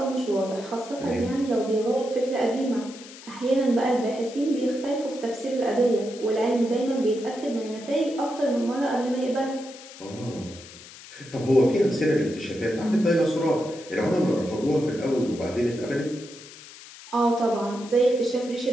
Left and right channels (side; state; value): left; noise; hiss, 17 dB below the sound